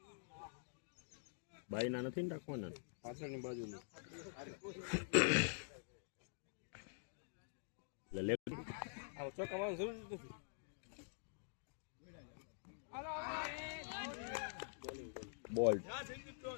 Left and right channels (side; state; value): right; silent; digital silence